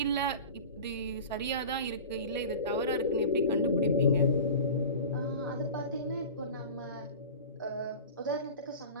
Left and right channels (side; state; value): both; inverted; correlation -0.36